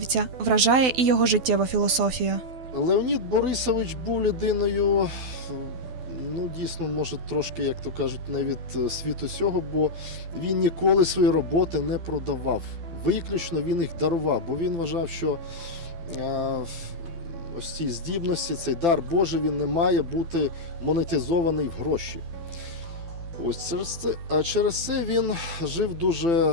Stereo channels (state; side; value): late; left; 12 ms